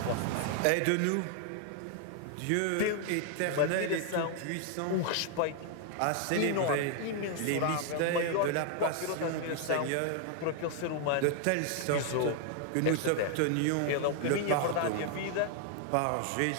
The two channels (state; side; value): different; both; correlation 0.00